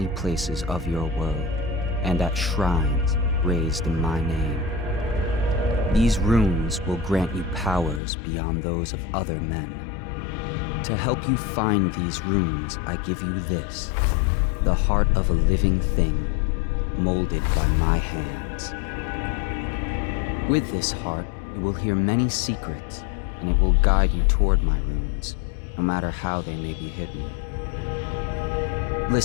places of your world, and at shrines raised in my name. These runes will grant you powers beyond those of other men. To help you find these runes, I give you this, the heart of a living thing, molded by my hands. With this heart, you will hear many secrets, and it will guide you toward my runes, no matter how they may be hidden.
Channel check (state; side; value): drops out; right; at 8.0 s